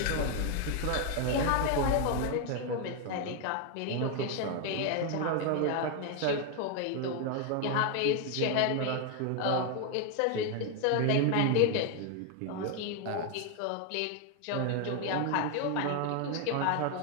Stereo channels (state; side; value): different; both; correlation 0.01